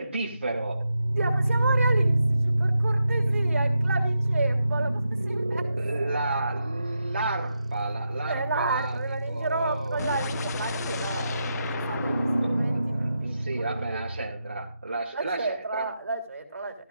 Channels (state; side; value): inverted; both; correlation -0.85